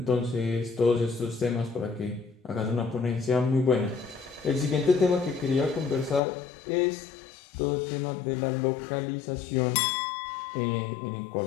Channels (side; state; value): right; drops out; at 6.2 s